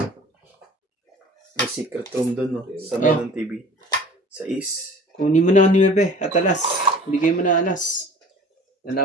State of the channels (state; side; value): normal; both; correlation 0.45